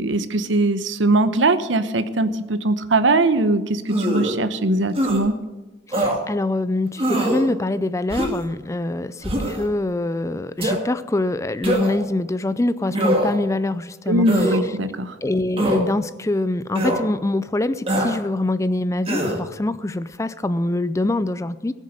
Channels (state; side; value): normal; both; correlation 0.52